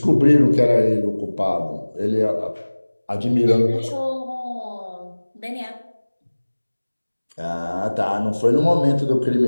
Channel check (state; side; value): inverted; both; correlation -1.00